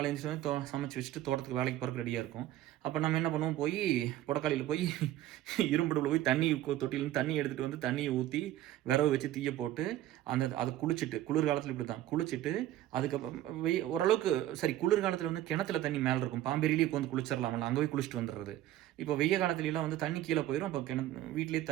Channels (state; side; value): quieter; left; 13.6 dB